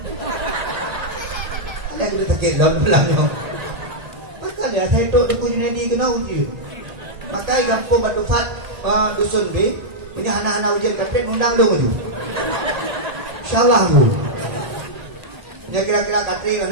Ada kita sakit dalam belakangnya. Maka dia saya itu duku jadi kena ujian. Maka kampung Batu Fat dusun B. Ini anak-anak ujian kata undang dong ujian. Insyaallah bu. Ini kira-kira kata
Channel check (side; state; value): left; late; 1.4 ms